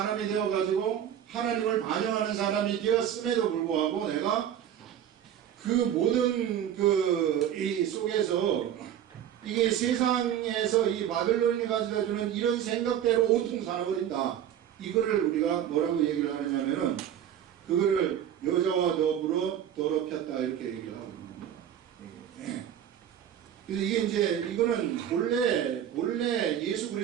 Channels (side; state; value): left; quieter; 10.1 dB